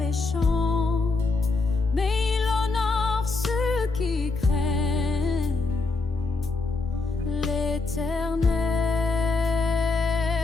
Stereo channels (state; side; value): quieter; right; 3.7 dB